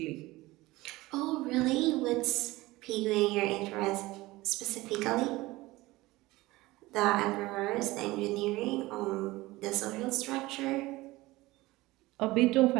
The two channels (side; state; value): left; quieter; 19.5 dB